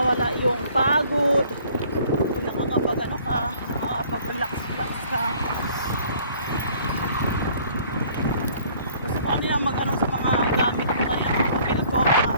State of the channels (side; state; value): both; inverted; correlation -0.56